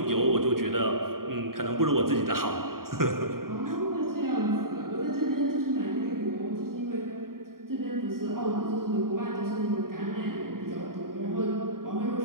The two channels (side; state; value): left; late; 0.92 ms